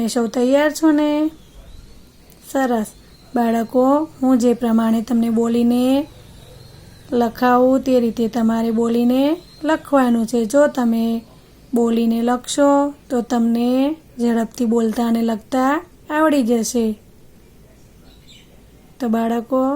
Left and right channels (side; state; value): both; identical; correlation 1.00